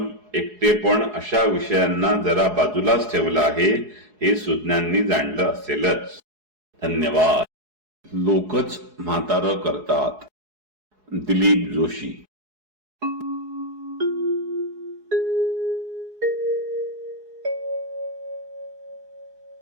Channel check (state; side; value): late; left; 4.7 ms